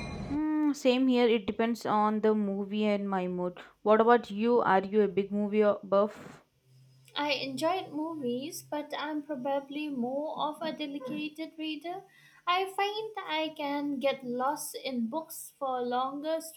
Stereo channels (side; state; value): both; identical; correlation 1.00